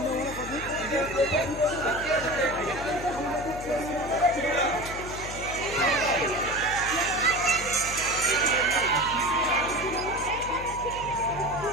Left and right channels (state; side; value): noise; left; hum, 12 dB below the sound